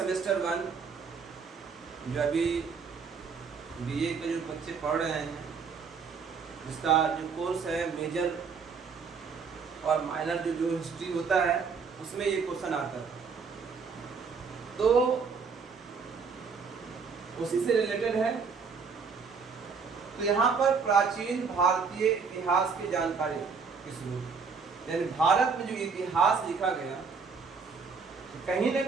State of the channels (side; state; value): left; quieter; 5.4 dB